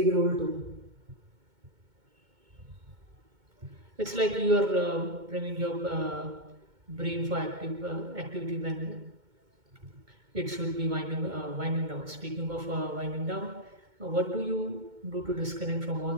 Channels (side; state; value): left; late; 2.2 ms